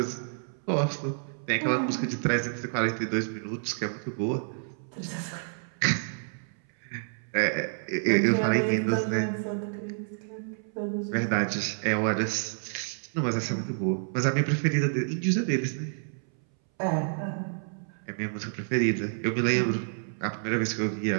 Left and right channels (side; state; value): left; silent; 59 dB below the other